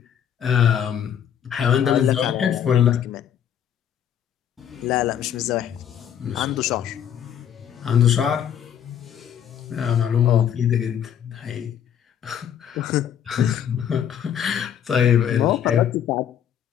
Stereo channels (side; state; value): right; quieter; 9.2 dB